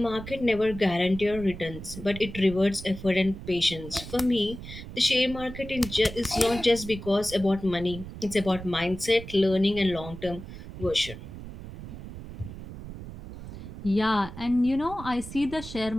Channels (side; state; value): right; noise; rumble, 12 dB below the sound